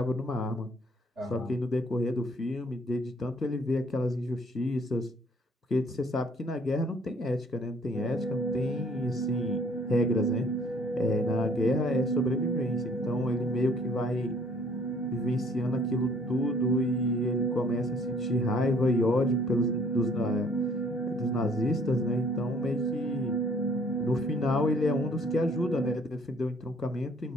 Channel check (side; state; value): both; normal; correlation 0.59